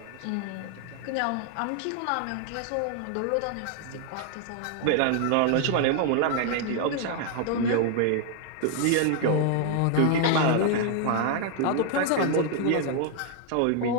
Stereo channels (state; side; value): different; both; correlation 0.00